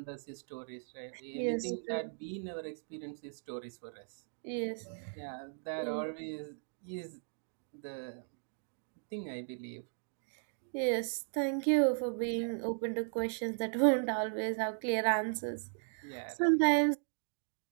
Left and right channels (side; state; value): left; silent; digital silence